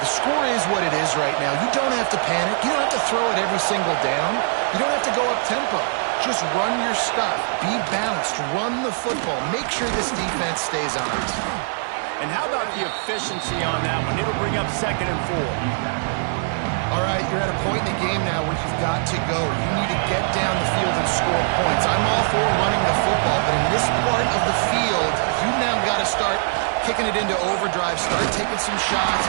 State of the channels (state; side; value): silent; left; digital silence